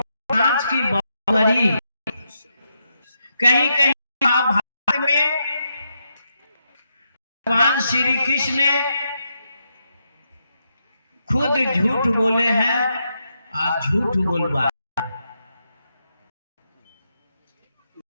कांच की बावरी। कहीं कहीं महाभारत में भगवान श्री कृष्ण ने खुद झूठ बोले हैं और झूठ बोलवाए।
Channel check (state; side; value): inverted; both; correlation -0.82